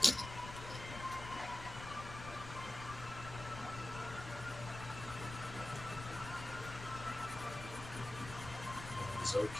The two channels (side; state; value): left; noise; rumble, 10 dB below the sound